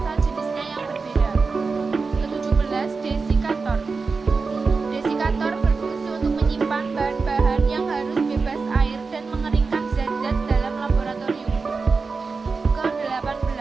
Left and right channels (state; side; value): quieter; left; 4.5 dB